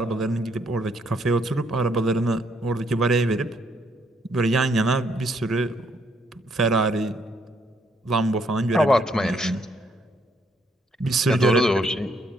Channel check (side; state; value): both; normal; correlation 0.71